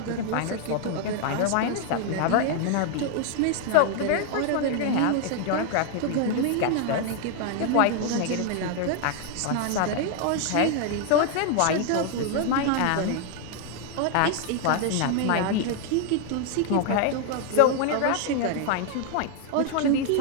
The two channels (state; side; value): different; both; correlation 0.00